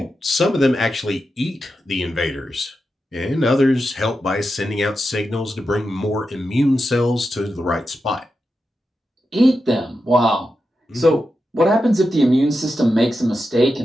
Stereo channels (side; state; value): both; normal; correlation 0.89